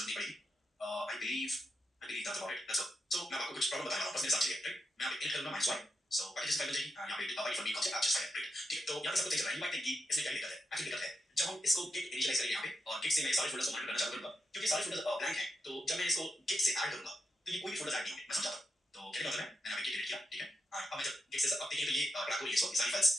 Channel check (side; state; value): both; normal; correlation 0.86